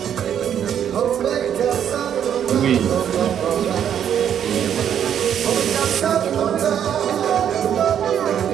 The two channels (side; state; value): left; quieter; 9.2 dB